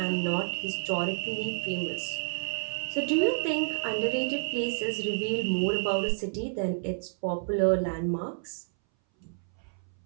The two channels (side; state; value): left; silent; 58 dB below the other